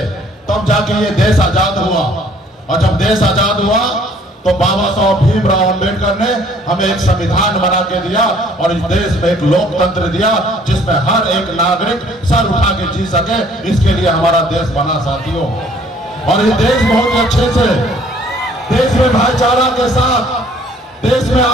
तब जाके ये देश आजाद हुआ। और जब देश आजाद हुआ तो बाबा साहब भीमराव अंबेडकर ने हमें एक संविधान बना के दिया और इस देश में एक लोकतंत्र दिया जिसमें हर एक नागरिक सर उठा के जी सके। इसके लिए हमारा देश बना साथियों। और ये देश बहुत अच्छे से, देश में भाईचारा के साथ, देश में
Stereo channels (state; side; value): normal; both; correlation 0.58